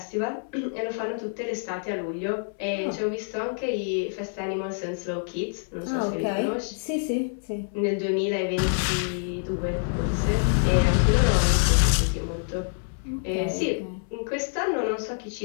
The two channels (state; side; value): silent; right; 61 dB below the other